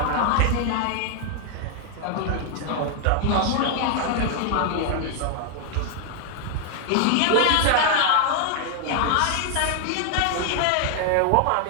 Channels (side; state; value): both; different; correlation 0.00